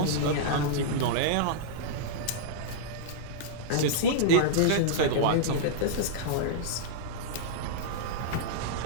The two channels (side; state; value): both; different; correlation -0.02